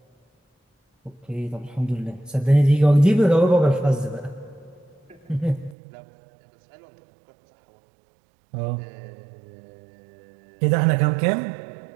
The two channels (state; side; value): drops out; left; at 5.8 s